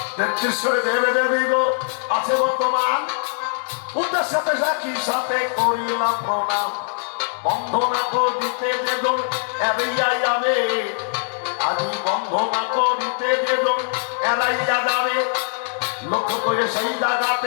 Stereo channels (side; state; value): right; silent; 64 dB below the other